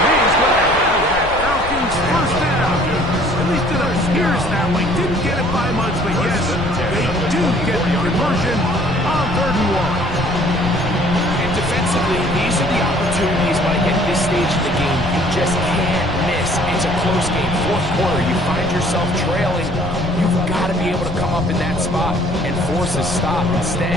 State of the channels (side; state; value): left; noise; rumble, 11 dB below the sound